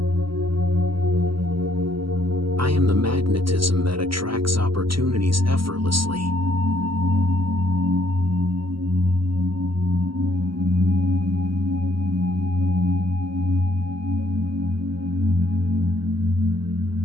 I am the magnetism that attracts opportunities effortlessly.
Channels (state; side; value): late; left; 0.74 ms